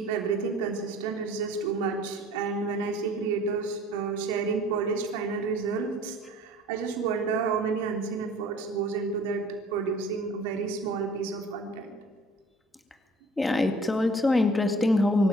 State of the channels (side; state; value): both; normal; correlation 0.50